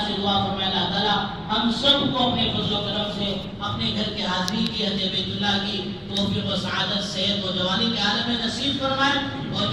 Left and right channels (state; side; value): identical; both; correlation 1.00